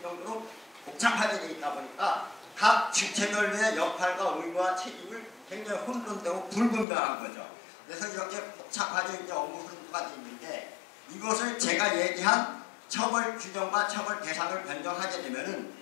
정도로 복잡하게 되어 있다 보니까 각 주체별의 역할과 의무와 책임을 굉장히 혼돈되고 불분명한 거죠. 그래서 이렇게 복잡하게 이제 업무 흐름가 되어 있는데 이것을 제가 얘기한 처벌 규정과 처벌 대상을 변경하게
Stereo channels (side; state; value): right; drops out; at 6.9 s